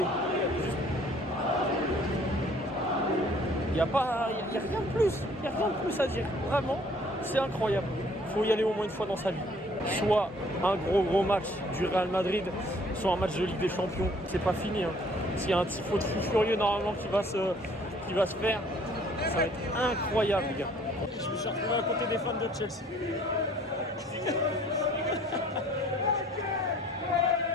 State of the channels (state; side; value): normal; both; correlation 0.57